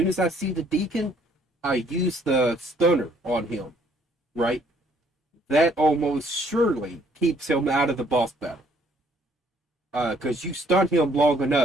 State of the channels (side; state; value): both; normal; correlation 0.64